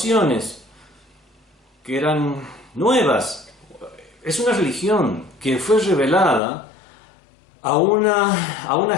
que eran nuevas. Es una religión que fue revelada a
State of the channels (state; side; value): drops out; right; at 6.4 s